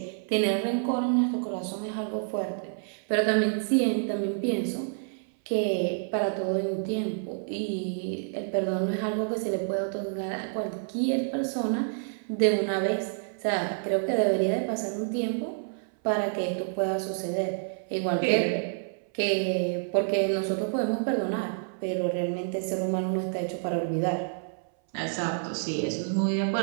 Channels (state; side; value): silent; left; 58 dB below the other